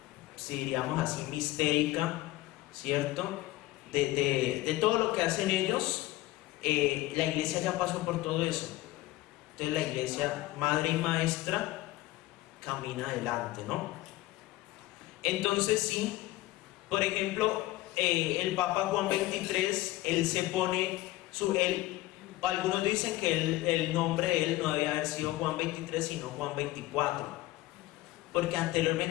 si diríamos así, mistérica, ¿cierto? De todo lo que hacen ellos, la iglesia ya pasó por todo eso. Entonces la iglesia, madre y maestra, camina adelante, ¿no? Entonces sí, por ejemplo, el Papa Juan XXIII, él se pone, algunos dicen que el nombre de él no debía haber sido Juan XXIII, sino Juan XXIV, porque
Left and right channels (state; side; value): quieter; right; 17.5 dB